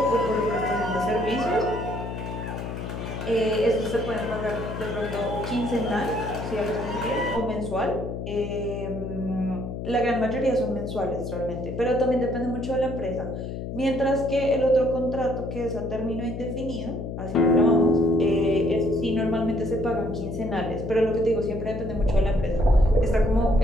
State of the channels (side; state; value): left; noise; hum, 6 dB below the sound